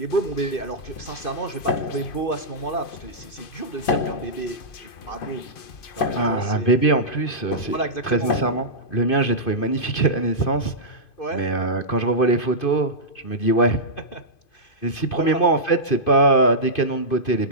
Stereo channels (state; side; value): late; right; 2.5 ms